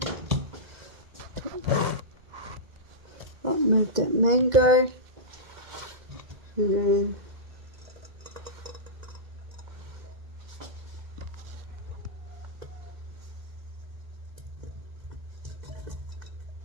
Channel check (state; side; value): late; left; 2.2 ms